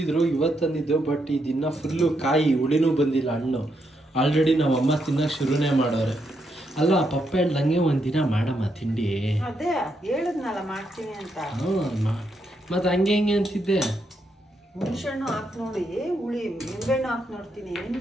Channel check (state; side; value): normal; both; correlation 0.79